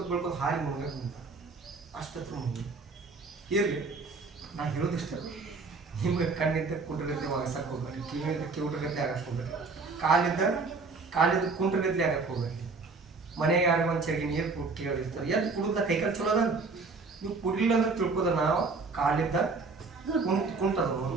ಹಾರಿ ಮುಗಿದ ಅಷ್ಟತ್ರ ಮುಗಿ ಇರಲಿ. ನಾ ಹೇಳೋದಿಷ್ಟ, ನಿಮ್ಗೆ ಕಣ್ಣಿದ್ದ ಕುಂಟ್ರಗತ್ತೆ ಒಗಸಕ್ಕೆ ಹೋಗ್ಬೇಡಿ, ಕಿವಿಯಿಂದ ಕಿವುಟ್ರಗತ್ತೆ ಆಗಕ್ಕೆ ಹೋಗ್ಬೇಡಿ, ಕಾಲಿದ್ದು ಕುಂಟ್ರಗತ್ತೆ ಆಗಕ್ಕೆ ಹೋಗ್ಬೇಡಿ. ಮನೆಗೆ ಯಾರು ಒಂದು ಚಗಿ ನೀರು ಕೊಟ್ಟು ಕೇಳಿರ್ತಾರೆ, ಎದ್ದು ಕುಡಿದ ಕೈಕಾಲು ಚಲೋ ಅದ. ನೀವು ಕುಡಿಲಿಲ್ಲ ಅಂದ್ರೆ ತಿಳ್ಕೋದ ನಾವು ಕಾಲಿದ್ದ ಕುಂಟದ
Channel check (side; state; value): left; quieter; 4.1 dB